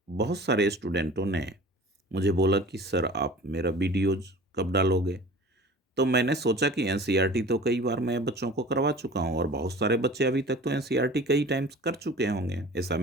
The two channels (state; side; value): normal; both; correlation 0.42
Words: बहुत सारे स्टूडेंटों ने मुझे बोला कि सर आप मेरा वीडियोज कब डालोगे। तो मैंने सोचा कि एनसीईआरटी तो कई बार मैं बच्चों को करवा चुका हूँ और बहुत सारे बच्चे अभी तक तो एनसीईआरटी कई टाइम्स कर चुके होंगे, ऐसा